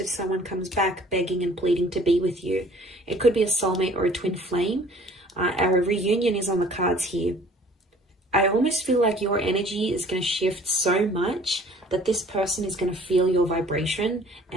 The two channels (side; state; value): both; normal; correlation 0.53